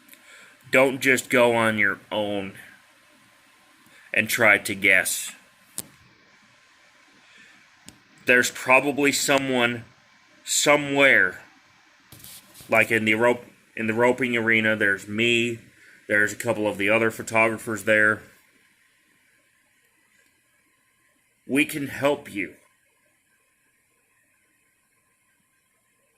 don't just go on your own and try to guess. There's probably someone somewhere, like in the roping arena. There's me. There's a couple of the other photographers there. We can help you.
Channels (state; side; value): identical; both; correlation 1.00